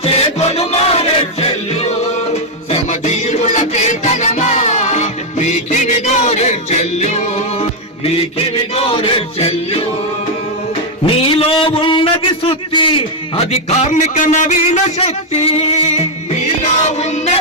చేకొను మారెడ్చెల్లు శ్రమజీవుల కేతనమా మీకివి గోరెడ్చెల్లు మీకివి గోరెడ్చెల్లు. నీలో ఉన్నది శుద్ధి, అది కార్మిక నవీన శక్తి. నీలో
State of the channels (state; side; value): normal; both; correlation 0.00